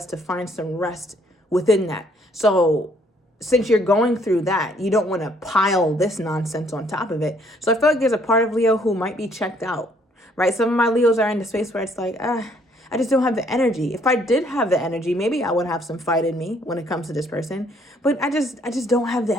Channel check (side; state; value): both; normal; correlation 0.65